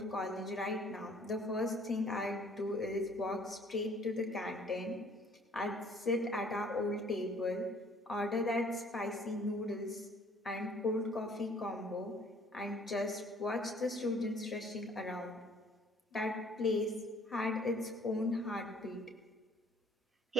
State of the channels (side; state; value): both; normal; correlation 0.57